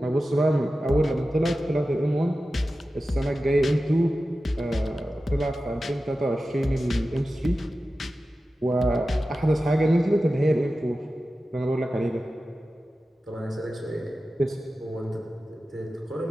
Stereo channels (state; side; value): normal; both; correlation 0.94